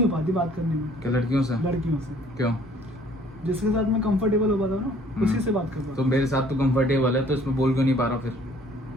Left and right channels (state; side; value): normal; both; correlation 0.57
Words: हो पाती बात करने में क्या लड़कियों से? लड़कियों से। क्यों? जिसके साथ मैं कंफर्टेबल हो पाता हूँ ना, उसी से बात कर पाता तो हूँ। मेरे साथ तो कंफर्टेबल है तो इसमें बोल क्यों नहीं पा रहा फिर?